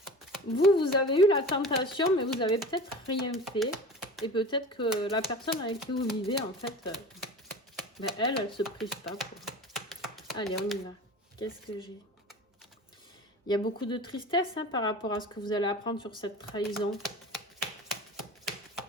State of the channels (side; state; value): both; normal; correlation 0.36